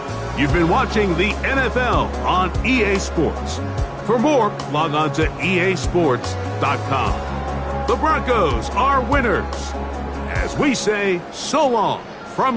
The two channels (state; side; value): identical; both; correlation 1.00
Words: You've been watching the NFL on EA Sports. For more, log on to easports.com. The Broncos are winners. As we say, so long